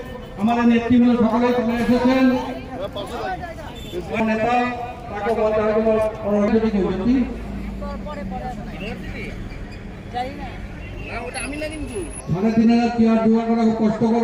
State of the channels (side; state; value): both; identical; correlation 1.00